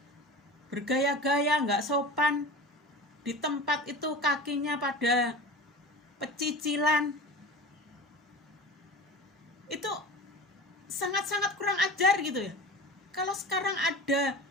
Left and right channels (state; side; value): normal; both; correlation 0.34